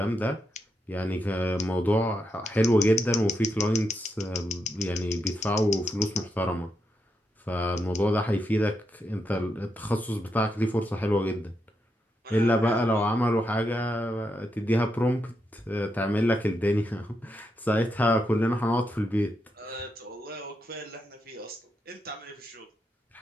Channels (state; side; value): normal; both; correlation 0.83